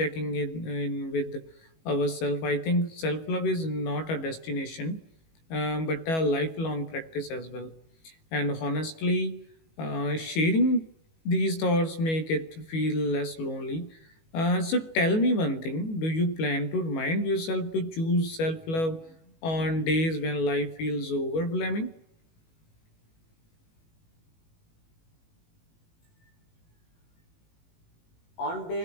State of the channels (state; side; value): late; right; 19 ms